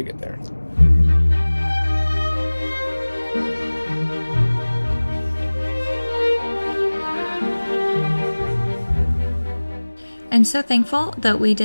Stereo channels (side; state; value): both; inverted; correlation -1.00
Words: get there. I'm so thankful that we